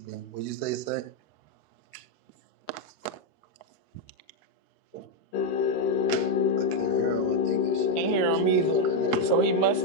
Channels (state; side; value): late; right; 13 ms